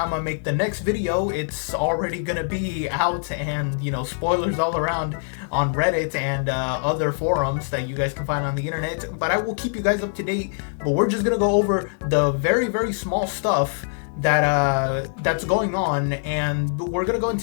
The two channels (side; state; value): right; silent; digital silence